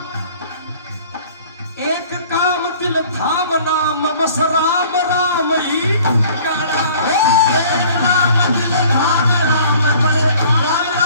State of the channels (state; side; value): inverted; both; correlation -0.51